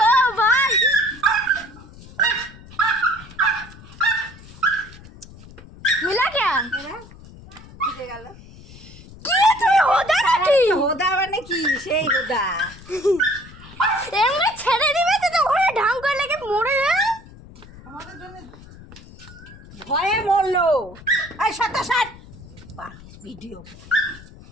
ओ भाई। मिला क्या? ঢুকে গেল। होदा नाকি? হোদা মানে কি? সেই হোদা। এমনি ছেড়ে দিবে তো ওখানে ঢাম করে লেগে মরে যাবে। আমাদের জন্য ভয়ে মরলো। এই সত্য ষাট ভিডিও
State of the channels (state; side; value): noise; left; rumble, 19 dB below the sound